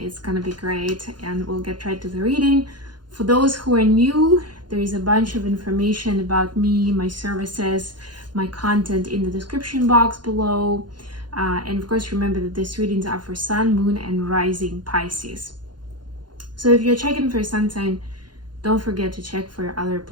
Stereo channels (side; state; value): left; late; 0.71 ms